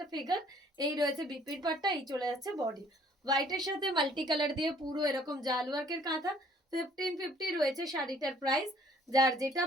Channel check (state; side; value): normal; both; correlation 0.59